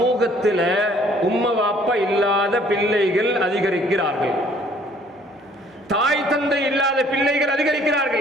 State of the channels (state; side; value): normal; both; correlation 0.59